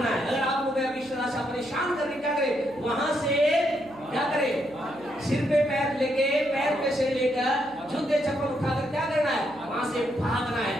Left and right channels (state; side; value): noise; right; hum, 24 dB below the sound